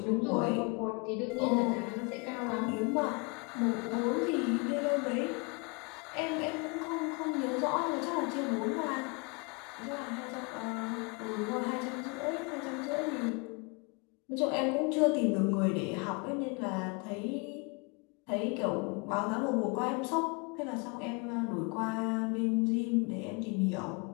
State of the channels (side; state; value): right; quieter; 31.9 dB